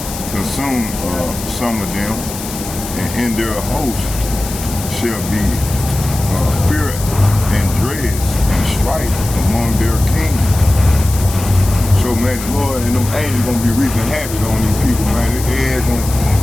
consume some of them, and in their host shall be fear and dread and strife among their kings. So man, the Lord and them angels gonna be reaping havoc on these people, man.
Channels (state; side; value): noise; left; hiss, 10 dB below the sound